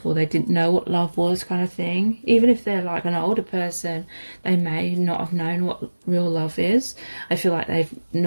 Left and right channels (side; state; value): both; inverted; correlation -1.00